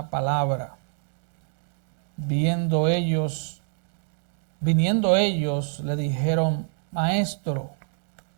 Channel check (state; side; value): silent; left; 61 dB below the other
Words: palabra. Viniendo ellos, le dijeron: Maestro,